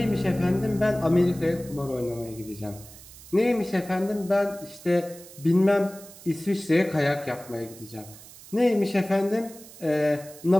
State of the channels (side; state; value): right; noise; hiss, 19 dB below the sound